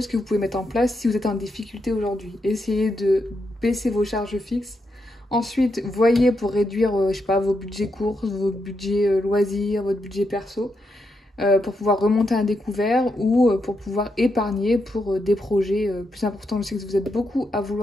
que vous pouvez mettre en place si vous êtes en difficulté aujourd'hui. Essayez de baisser vos charges fixes. Ensuite, voyez pour réduire, je sais pas, vos budgets courses, vos budgets loisirs, votre budget perso, pour pouvoir remonter un découvert ou pour pouvoir épargner pour des projets plus importants. Je sais que vous êtes beaucoup à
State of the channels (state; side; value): normal; both; correlation 0.82